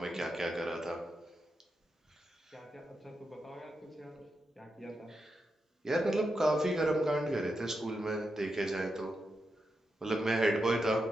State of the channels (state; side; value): normal; both; correlation 0.86